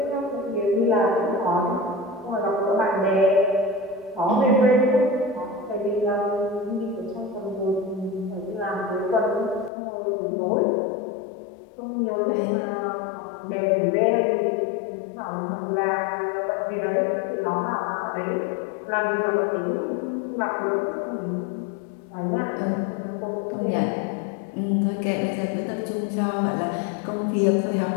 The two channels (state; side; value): drops out; right; at 9.7 s